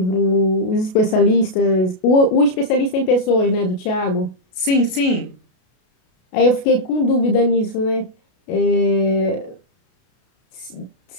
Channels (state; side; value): late; right; 32 ms